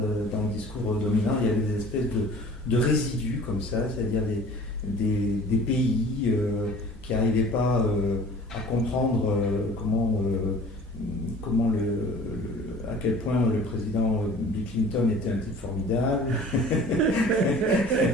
dans le discours dominant, il y avait des espèces de résidus comme ça, c'est-à-dire des pays qui n'arrivaient pas à comprendre à quel point le président Bill Clinton était un type formidable,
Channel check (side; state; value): both; normal; correlation 0.46